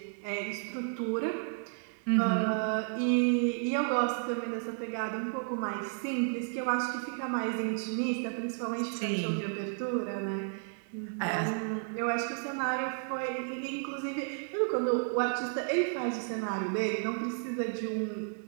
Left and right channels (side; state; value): left; silent; 56 dB below the other